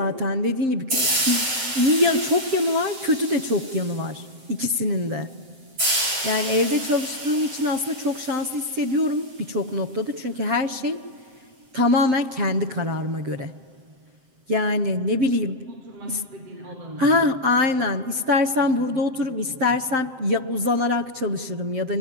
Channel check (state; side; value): late; left; 7.6 ms